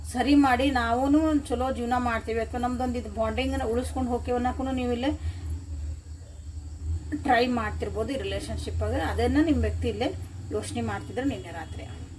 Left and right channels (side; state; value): both; identical; correlation 1.00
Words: ಸರಿ ಮಾಡಿ ನಾವು ಚಲೋ ಜೀವನ ಮಾಡ್ತೀವಿ ಅಥವಾ ನಮ್ದೊಂದು ಇದು ಬಾಂಡಿಂಗನ್ನು ಉಳಿಸ್ಕೊಂಡು ಹೋಗ್ತೀವಿ ಅನ್ನೋಕ್ಕೂ ನೀವು ಇಲ್ಲೇ ಟ್ರೈ ಮಾಡ್ತಿರ್ಬೋದು ಈ ರಿಲೇಷನ್ಶಿಪ್ಪಾಗ. ಅದನ್ನು ನಿಮ್ಮ ವ್ಯಕ್ತಿ ಇಲ್ಲೇ ಯೋಚನೆ ಮಾಡ್ತಿದ್ರೆ ನಿನ್ನೆ ರಾತ್ರಿ.